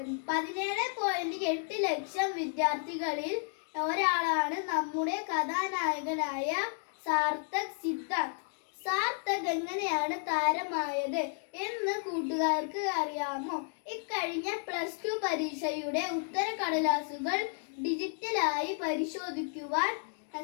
17.8 ലക്ഷം വിദ്യാർത്ഥികളിൽ ഒരാളാണ് നമ്മുടെ കഥാനായകനായ സാർത്ഥക് സിദ്ധാർത്ഥ്. സാർത്ഥക് എങ്ങനെയാണ് താരമായത് എന്ന് കൂട്ടുകാർക്ക് അറിയാമോ? ഇക്കഴിഞ്ഞ +2 പരീക്ഷയുടെ ഉത്തരക്കടലാസുകൾ ഡിജിറ്റലായി പരിശോധിക്കുവാൻ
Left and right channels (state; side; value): silent; right; 56 dB below the other